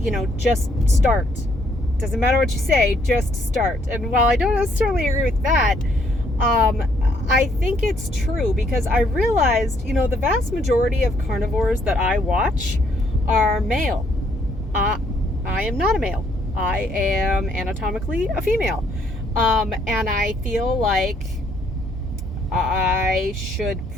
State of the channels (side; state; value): both; normal; correlation 0.69